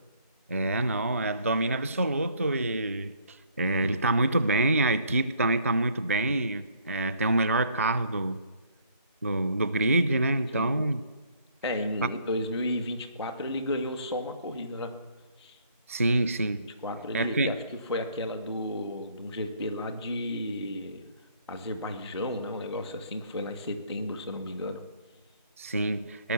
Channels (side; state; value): both; inverted; correlation -0.62